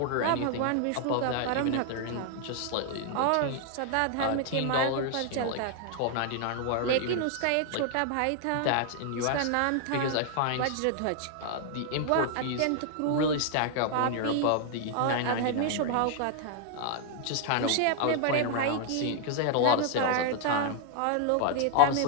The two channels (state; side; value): different; both; correlation 0.00